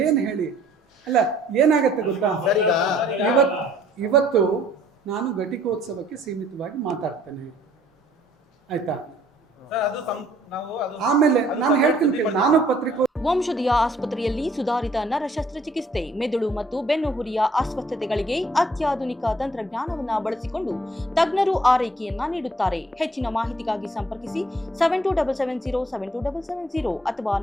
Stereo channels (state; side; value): normal; both; correlation 0.60